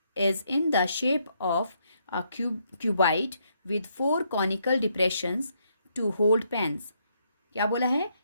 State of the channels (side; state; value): both; inverted; correlation -0.75